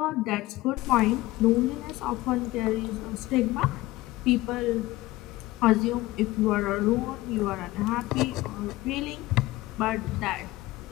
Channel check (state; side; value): quieter; right; 18.5 dB